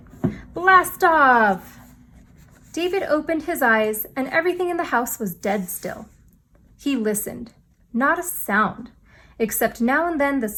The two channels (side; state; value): both; identical; correlation 1.00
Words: Blast off! David opened his eyes and everything in the house was dead still. He listened. Not a sound, except now and then the